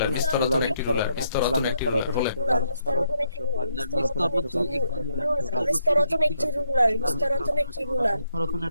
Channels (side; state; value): both; inverted; correlation -0.75